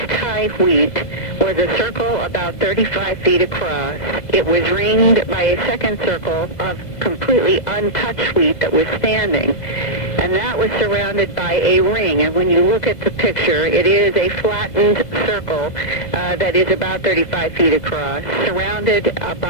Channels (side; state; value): right; late; 1.5 ms